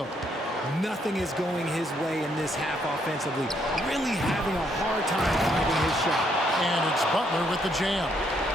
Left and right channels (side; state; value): both; normal; correlation 0.72